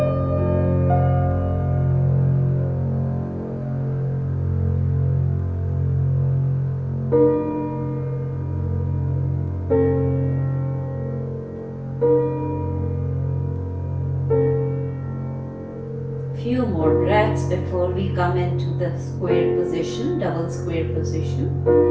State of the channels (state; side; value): identical; both; correlation 1.00